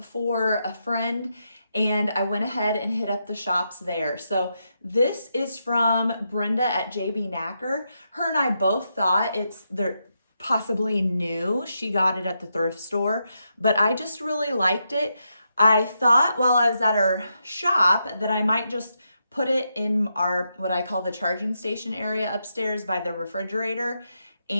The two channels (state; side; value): inverted; both; correlation -0.83